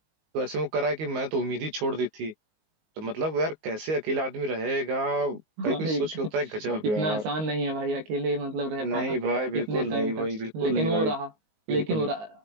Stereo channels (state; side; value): late; left; 19 ms